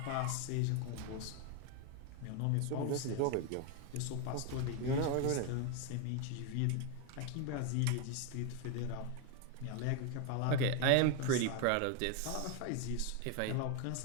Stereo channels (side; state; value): both; different; correlation 0.01